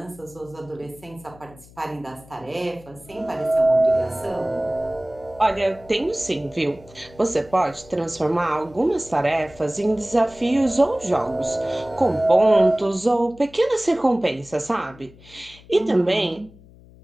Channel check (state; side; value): noise; left; hum, 23 dB below the sound